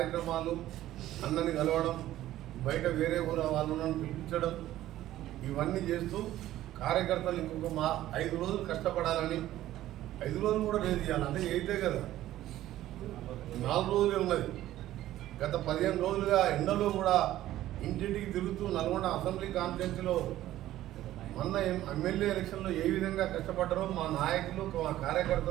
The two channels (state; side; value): quieter; left; 14.1 dB